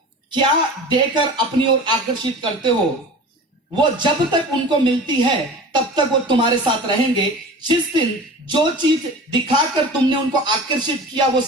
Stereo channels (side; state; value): both; normal; correlation 0.37